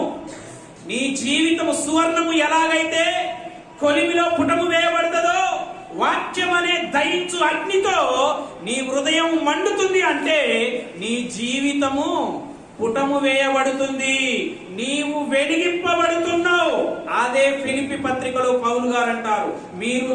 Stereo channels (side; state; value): both; identical; correlation 1.00